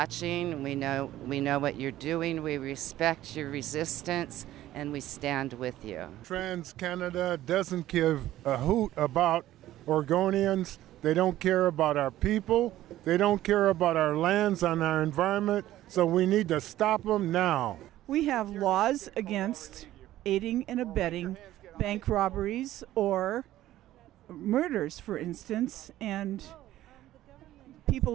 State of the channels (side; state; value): left; quieter; 14.2 dB